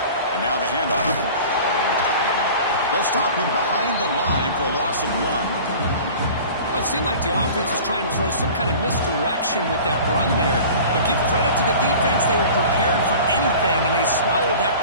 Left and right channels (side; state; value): both; inverted; correlation -0.41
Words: And now the handoff. They'll stop him behind the line for a loss of 1. Well, it seemed like the offense was trying to throw some kind of misdirection with that run there. But give credit to the defense. They were prepared for anything, and they swallowed that